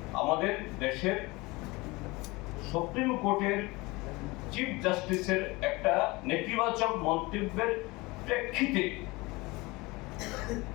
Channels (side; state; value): right; quieter; 23.3 dB